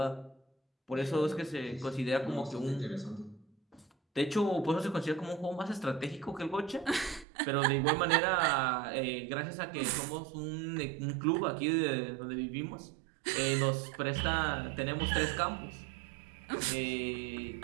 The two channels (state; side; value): drops out; left; at 7.2 s